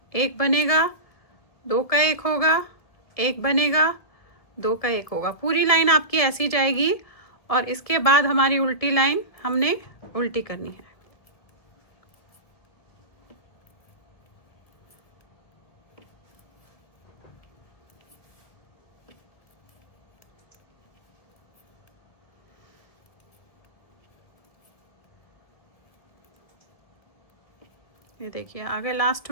1 बनेगा, 2 का 1 होगा, 1 बनेगा, 2 का 1 होगा। पूरी लाइन आपकी ऐसी जाएगी, और इसके बाद हमारी उल्टी लाइन हमने उल्टी करनी है। ये देखिए, आगे लास्ट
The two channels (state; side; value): late; right; 1.7 ms